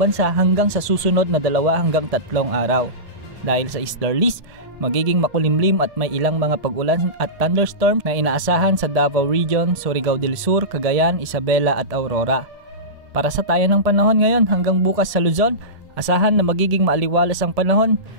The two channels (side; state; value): left; late; 1.7 ms